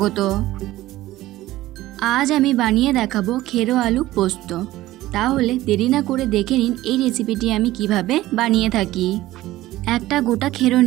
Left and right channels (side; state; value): left; quieter; 16.2 dB